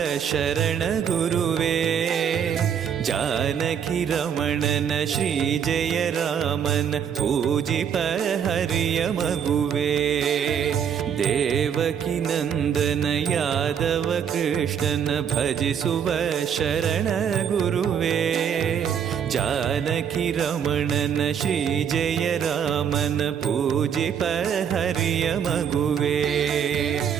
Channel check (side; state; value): left; quieter; 8.0 dB